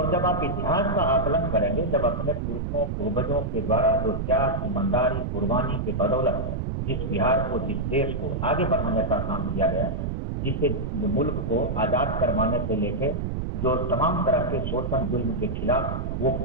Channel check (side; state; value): right; noise; rumble, 2 dB below the sound